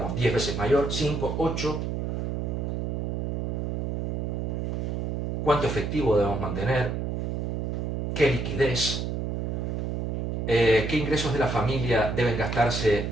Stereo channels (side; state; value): right; noise; hum, 1 dB below the sound